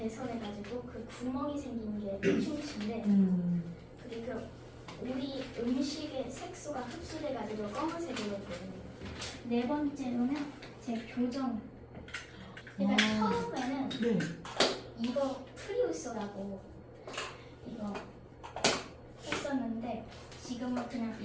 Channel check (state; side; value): identical; both; correlation 1.00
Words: 그 구멍이 생긴 게 충치인데, 그리고 우리 음식의 색소가 흡수돼가지고 검은색으로 보여요. 네 번째로는 제 교정. 제가 처음에는 이거 프리우스라고 이거 했었는데 지금은 그냥